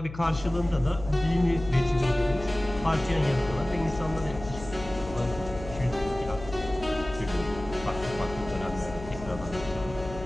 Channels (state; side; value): noise; left; hum, 13 dB below the sound